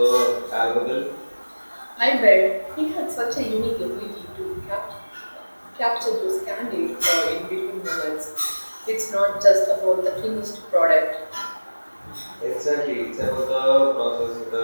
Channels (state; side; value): inverted; both; correlation -1.00